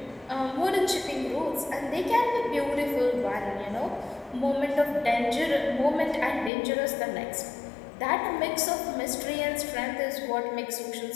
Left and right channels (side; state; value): right; drops out; at 6.5 s